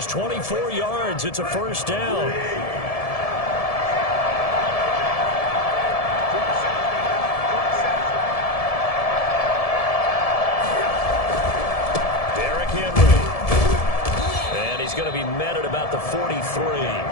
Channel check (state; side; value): late; right; 1.7 ms